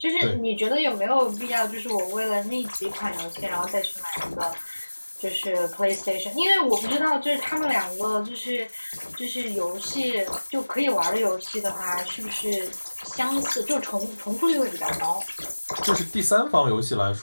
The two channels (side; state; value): both; inverted; correlation -1.00